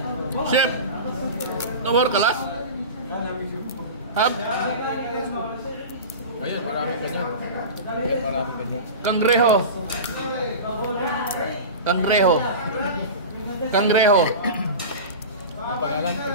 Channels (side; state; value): both; inverted; correlation -0.30